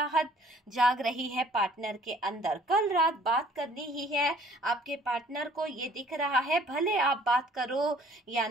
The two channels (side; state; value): both; normal; correlation 0.56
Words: जाग रही है पार्टनर के अंदर। कल रात बात करनी ही है आपके पार्टनर को, ये दिख रहा है। भले आप बात करो या